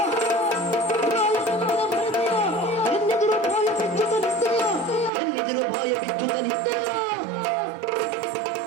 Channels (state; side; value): drops out; left; at 5.1 s